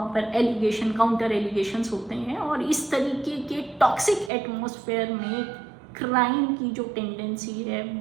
पर एलिगेशन काउंटर एलिगेशंस होते हैं और इस तरीके के टॉक्सिक एटमॉस्फेयर में क्राइम की जो टेंडेंसी है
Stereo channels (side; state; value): left; drops out; at 4.3 s